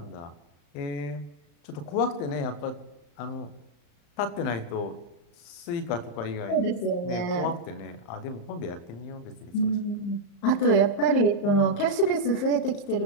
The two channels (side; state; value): right; late; 35 ms